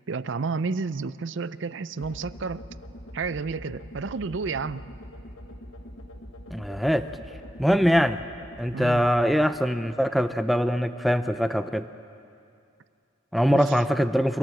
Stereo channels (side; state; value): both; normal; correlation 0.87